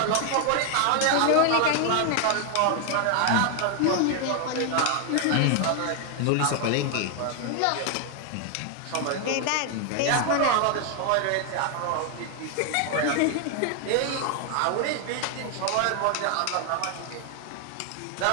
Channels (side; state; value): both; different; correlation 0.00